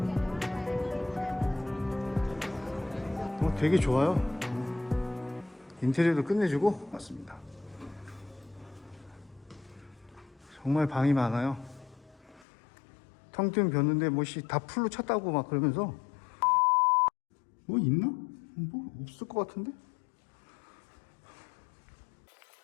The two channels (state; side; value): drops out; right; at 12.5 s